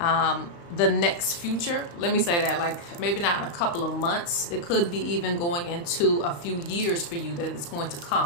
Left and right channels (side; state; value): right; late; 35 ms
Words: the next future. Let me say that, like maybe not in a couple of months. It could be even going into a few years for you that it's going to